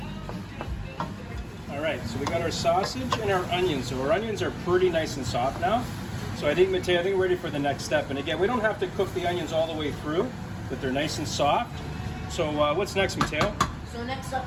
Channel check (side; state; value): both; identical; correlation 1.00